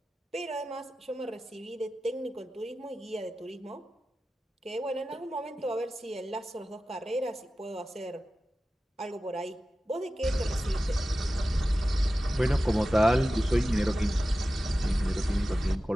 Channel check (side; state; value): both; normal; correlation 0.94